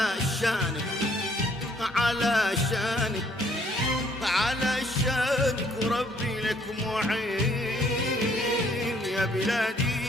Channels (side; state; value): both; normal; correlation 0.64